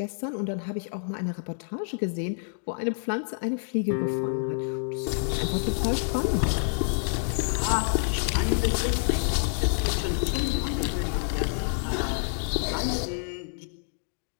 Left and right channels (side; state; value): right; silent; digital silence